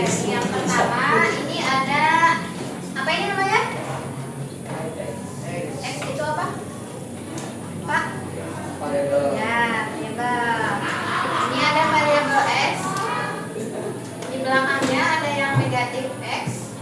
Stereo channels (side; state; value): both; identical; correlation 1.00